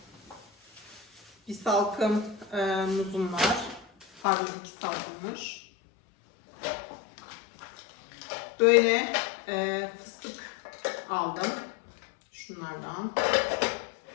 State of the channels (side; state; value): right; drops out; at 4.2 s